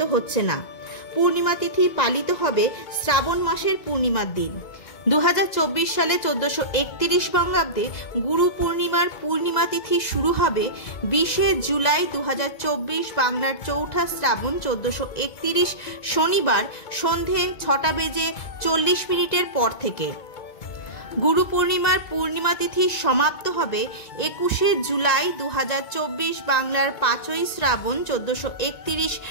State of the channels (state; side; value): late; right; 1.9 ms